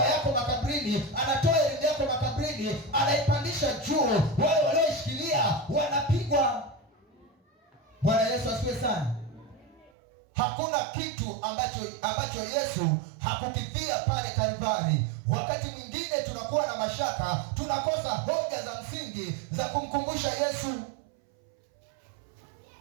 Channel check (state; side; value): drops out; left; at 9.9 s